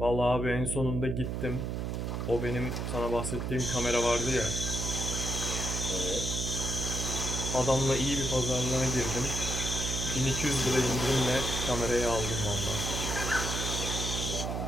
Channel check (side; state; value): right; noise; hum, 2 dB below the sound